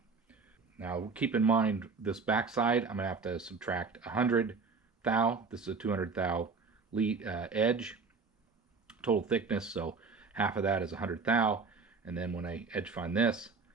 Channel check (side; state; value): left; quieter; 4.7 dB